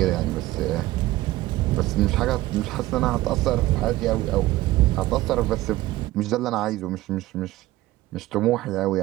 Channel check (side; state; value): left; quieter; 17.1 dB